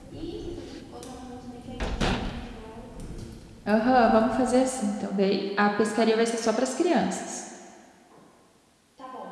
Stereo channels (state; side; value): identical; both; correlation 1.00